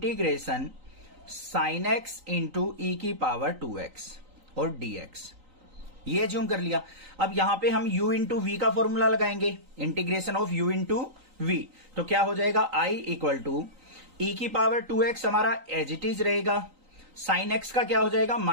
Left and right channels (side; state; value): left; late; 3.9 ms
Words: sine x into e की पावर 2x और dx, ये एज्यूम कर लिया। अब यहां पे हम u इंटू v का फॉर्मूला लगाएंगे, integration of u into v। तो क्या हो जाएगा? i इक्वल टू ई की पावर 2x हमारा एज इट इज रहेगा, साइन x का क्या हो जाएगा?